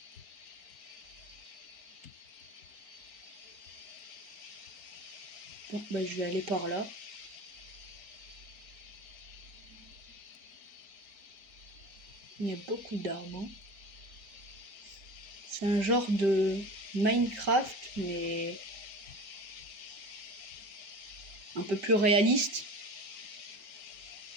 Bon, bah, je vais aller par là. Il y a beaucoup d'arbres. Hein. C'est un genre de Minecraft, mais un peu plus réaliste.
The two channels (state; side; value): late; left; 5.2 ms